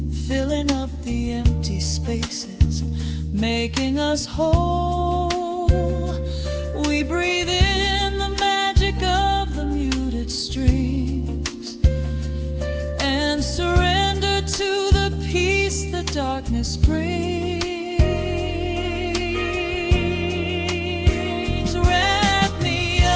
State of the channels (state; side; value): identical; both; correlation 1.00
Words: filling up the empty spaces, making us whole. We breathe in the magic of the muted strings and surrender to the peace the darkness brings. Wrap me